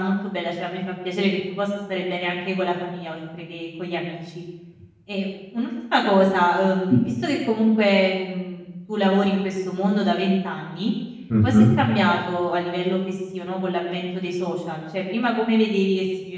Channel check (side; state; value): both; identical; correlation 1.00